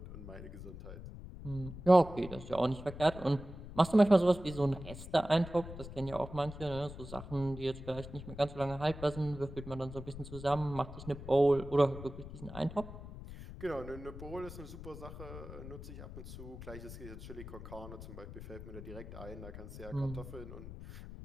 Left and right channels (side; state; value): left; noise; rumble, 12 dB below the sound